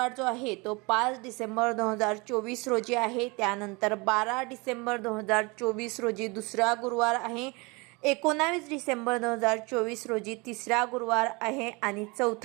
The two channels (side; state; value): left; quieter; 27.1 dB